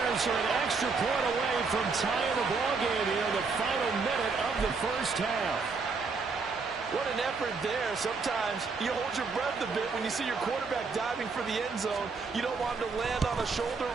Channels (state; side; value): quieter; left; 4.6 dB